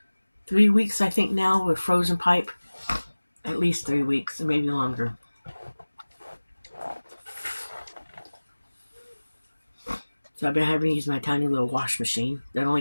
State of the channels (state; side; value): inverted; both; correlation -1.00